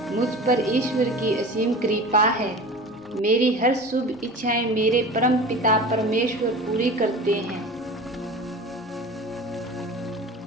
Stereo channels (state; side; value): normal; both; correlation 0.36